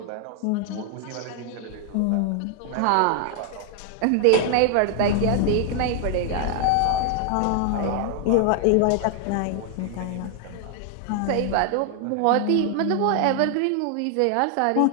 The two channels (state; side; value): different; both; correlation 0.00